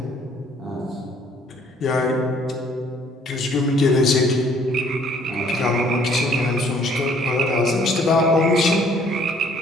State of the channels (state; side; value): normal; both; correlation 0.60